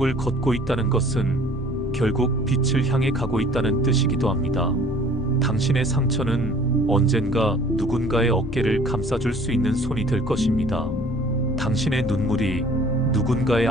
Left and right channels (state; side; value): noise; left; rumble, 12 dB below the sound